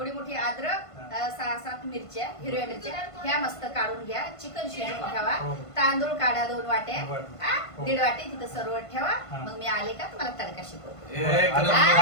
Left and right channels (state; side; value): late; right; 1.5 ms